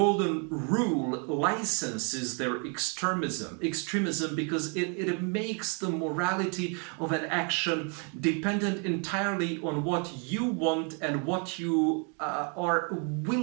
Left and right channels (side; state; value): left; quieter; 38.1 dB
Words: Rule licenses their extremism because it makes the morality of an action dependent entirely on what you want and what you are